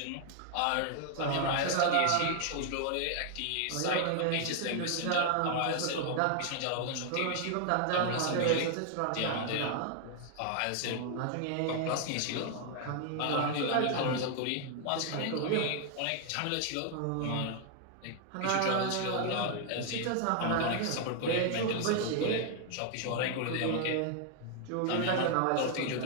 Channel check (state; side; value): different; both; correlation 0.00